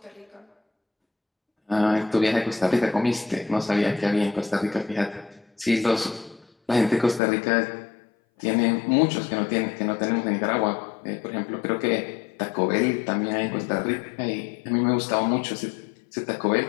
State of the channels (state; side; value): drops out; right; at 7.2 s